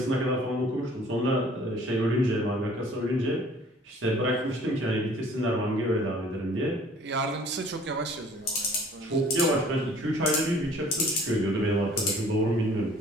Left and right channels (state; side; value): normal; both; correlation 0.53